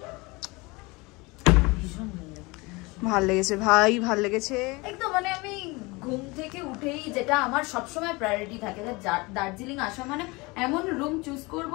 ভাল লেগেছে ভাই, ভাল লেগেছে একদম। মানে আমি ঘুম থেকে উঠেই, যেটা আমার সবসময় প্রায়োরিটি থাকে, যে দার্জিলিং আসা মানে এমন রুম চুজ করব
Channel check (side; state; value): right; quieter; 24.8 dB